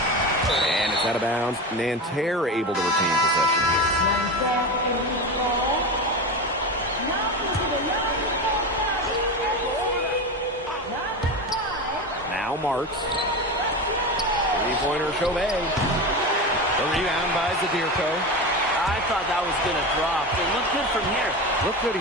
And it's out of bounds. Nanterre able to retain possession here. Now Marks. Three-pointer Shohei. The rebound by Zadirko. I thought that was going to drop. It looked good from here. Looked good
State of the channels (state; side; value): normal; both; correlation 0.23